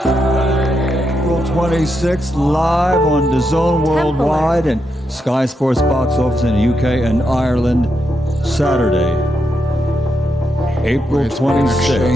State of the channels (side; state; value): both; normal; correlation 0.83